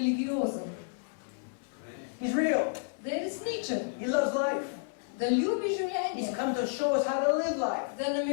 He's real. Da je resničen. He loves life. Da ljubi He's življenje. come to show us how to live life. Da nam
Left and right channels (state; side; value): silent; right; 55 dB below the other